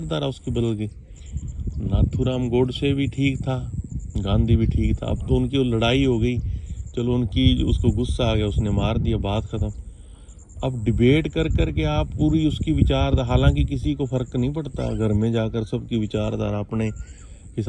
उसकी बदल गई? नाथूराम गोडसे भी ठीक था, गांधी भी ठीक था, अब तो उनकी लड़ाई हो गई, चलो उनकी, उसको गुस्सा आ गया, उसने मार दिया, बात ख़त्म। अब डिबेट कर कर के आप पूरी उसकी विचार, हालांकि किसी को फ़र्क नहीं पड़ता, घर में जाकर सबकी विचारधारा अपने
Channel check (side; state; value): both; identical; correlation 1.00